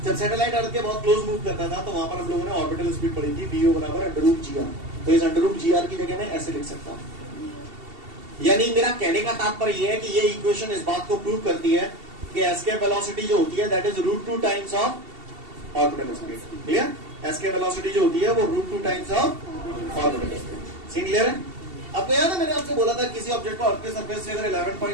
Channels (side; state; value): left; late; 2.7 ms